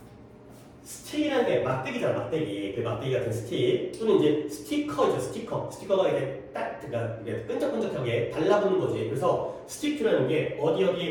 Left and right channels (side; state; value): both; identical; correlation 1.00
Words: 스틱이라는 게 막대기잖아, 막대기. 그 막대기 같은 스틱. 또는 이제 스티커죠, 스티커. 스티커가 이렇게 딱, 그러니까 이게 끈적끈적하게 달라붙는 거지. 그래서 스틱이라는 게